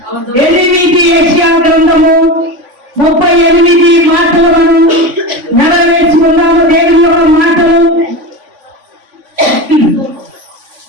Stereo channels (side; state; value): left; late; 3.5 ms